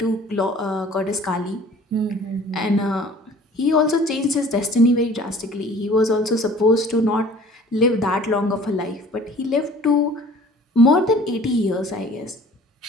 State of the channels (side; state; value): both; normal; correlation 0.49